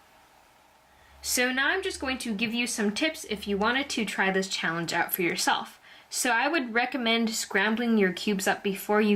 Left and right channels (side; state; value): both; identical; correlation 1.00